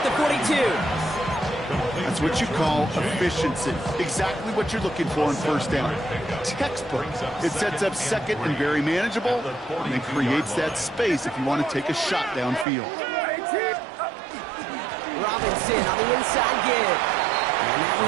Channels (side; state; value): left; drops out; at 12.7 s